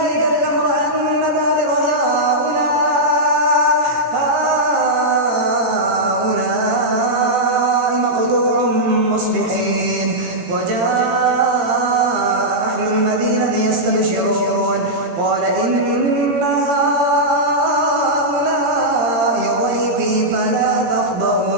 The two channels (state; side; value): late; left; 17 ms